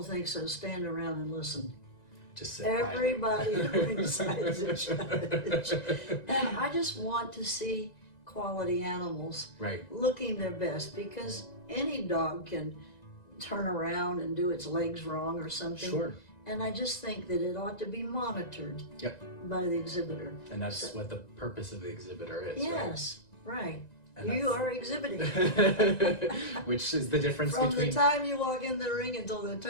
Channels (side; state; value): right; late; 1.9 ms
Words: think so, stand around and listen. Just sit Everybody at ringside's a judge. And I just want to see quality animals looking their best, because any dog can turn around and do its legs wrong or something. Sure. And I just think that it ought to be monitored by the exhibitor. And that's what the purpose of the exhibitor is, yes, right. And You are exhibiting. which is the difference From between... the time you walk in the ring until the